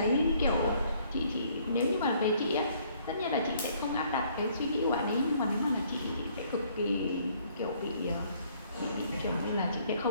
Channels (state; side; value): inverted; both; correlation -0.63